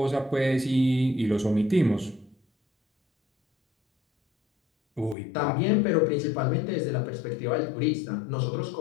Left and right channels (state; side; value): drops out; right; at 5.2 s